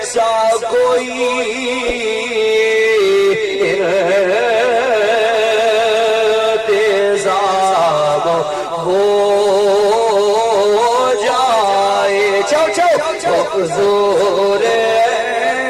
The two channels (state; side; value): noise; right; rumble, 29 dB below the sound